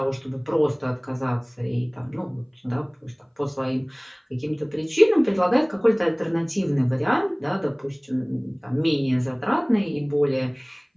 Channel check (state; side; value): identical; both; correlation 1.00